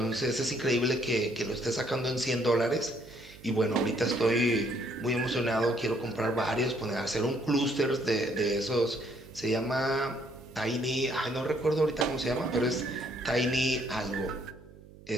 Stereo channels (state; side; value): noise; right; hum, 21 dB below the sound